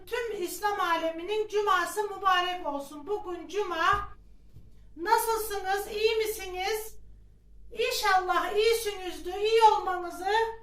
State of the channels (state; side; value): identical; both; correlation 1.00